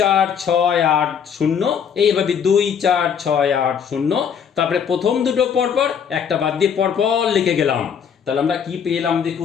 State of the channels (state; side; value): quieter; right; 7.5 dB